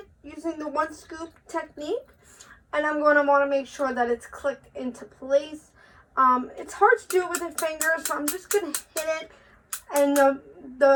using the 1 scoop technique. And I'm going to want to make sure that it's clicked into place. It's hard to do it with a finger, so I'm just going to hit it. And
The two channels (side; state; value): both; identical; correlation 1.00